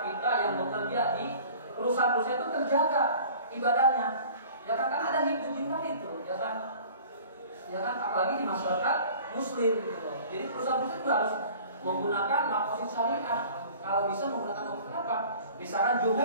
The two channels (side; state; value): both; inverted; correlation -0.46